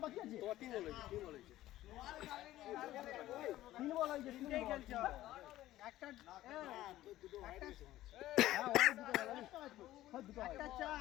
বাকি আছে তিন বল হয়েছে তিনটাই খেলছে একটা একটা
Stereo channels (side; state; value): right; quieter; 14.9 dB